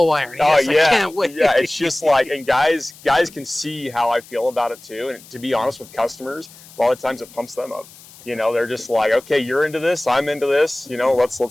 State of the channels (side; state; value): left; noise; hiss, 22 dB below the sound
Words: iron. Oh yes, yeah, I can't wait. Yeah. It's just like, and guys can see how I feel about it too. And to be honest with customers, a lot of times it pumps them up. They're just like, okay, you're into this, I'm into this.